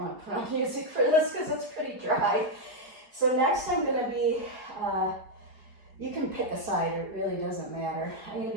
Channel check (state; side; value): late; left; 4.9 ms